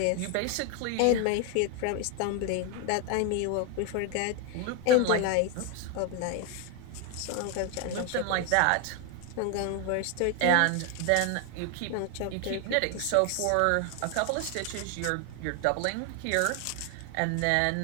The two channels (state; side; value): different; both; correlation 0.01